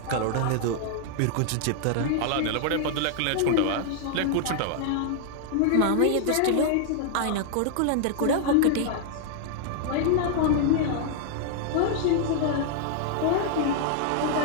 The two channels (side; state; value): both; different; correlation -0.01